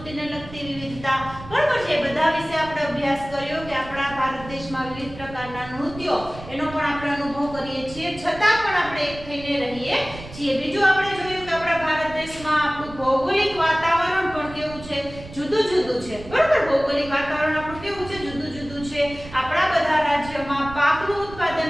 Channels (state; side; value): noise; right; rumble, 15 dB below the sound